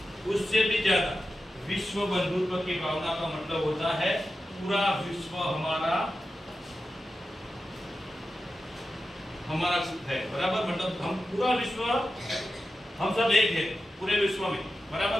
उससे भी ज्यादा विश्व बंधुत्व की भावना का मतलब होता है पूरा विश्व हमारा है, बराबर। मतलब हम पूरा विश्व, हम सब एक है पूरे विश्व में,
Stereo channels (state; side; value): normal; both; correlation 0.92